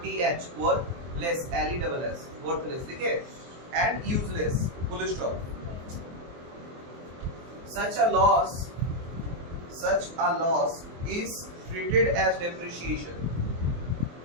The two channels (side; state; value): left; late; 23 ms